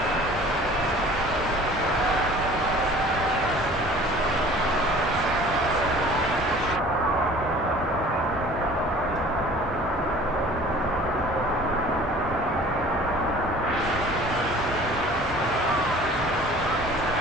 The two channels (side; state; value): both; normal; correlation 0.47